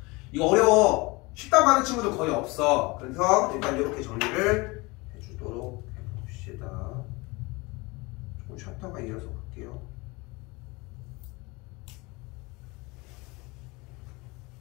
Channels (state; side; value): quieter; right; 24.8 dB